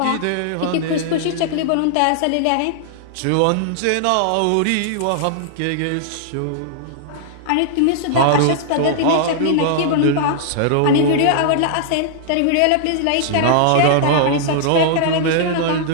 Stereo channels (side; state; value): both; different; correlation -0.01